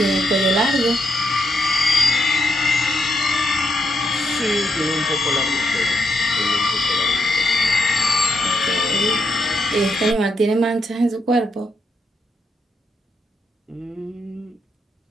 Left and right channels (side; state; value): both; normal; correlation 0.79